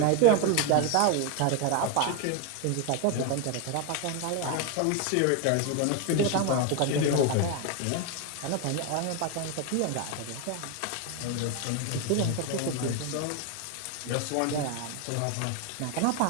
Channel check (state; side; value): different; both; correlation 0.02